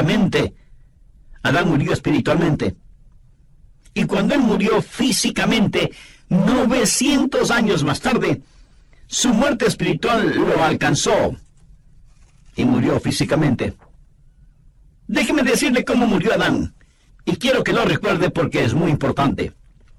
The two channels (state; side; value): identical; both; correlation 1.00